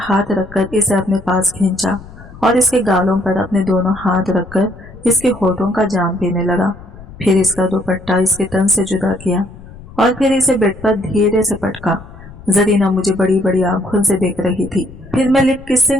हाथ रखकर इसे अपने पास खींचा और इसके गालों पर अपने दोनों हाथ रखकर इसके होठों का जाम पीने लगा। फिर इसका दुपट्टा इसके तन से जुदा किया और फिर इसे बेड पर धीरे से पटका। जरीना मुझे बड़ी बड़ी आंखों से देख रही थी। फिर मैं लिप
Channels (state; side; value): noise; left; rumble, 18 dB below the sound